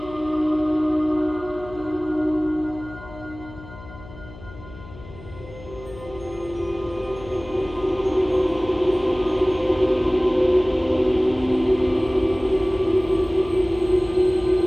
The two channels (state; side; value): noise; left; hum, 17 dB below the sound